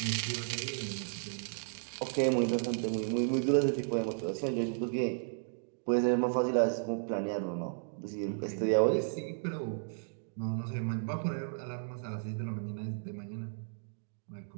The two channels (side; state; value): left; silent; digital silence